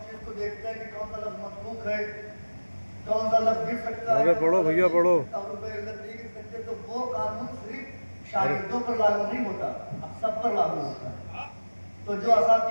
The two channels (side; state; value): both; inverted; correlation -1.00